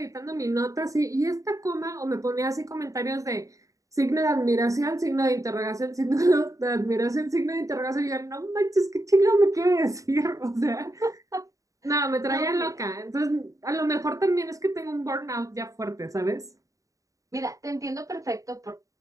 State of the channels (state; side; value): late; left; 0.16 ms